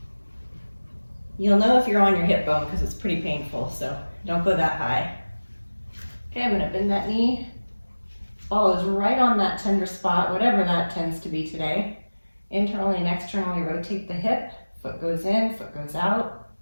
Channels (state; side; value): inverted; both; correlation -1.00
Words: You'll know if you're on your hip bone because it's pretty painful, so don't go that high. Okay, I'm gonna bend that knee. Ball is right on that tender spot, whatever that tends to be today. Internally and externally rotate the hip. Foot goes in, foot goes out.